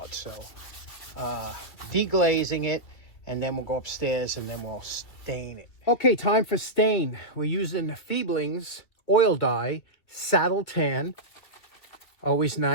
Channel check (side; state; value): right; late; 2.9 ms